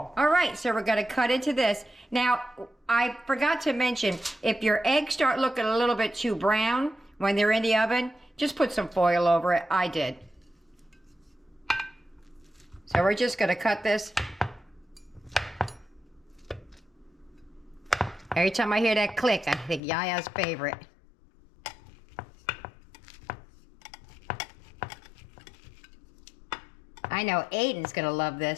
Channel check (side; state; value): right; drops out; at 19.8 s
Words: All right, so we're gonna cut into this. Now, I forgot to mention, if your eggs start looking a little bit too brown when they're in the oven, just put some foil over it. I did. So we're just gonna cut this. Every time I hear that click, I think Yaya's favorite. I know Aiden's gonna love